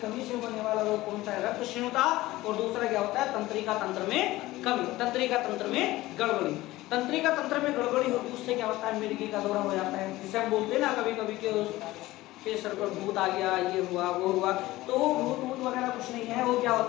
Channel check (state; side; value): quieter; right; 17.8 dB